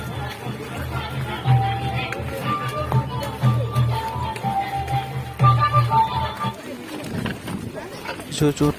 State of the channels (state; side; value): identical; both; correlation 1.00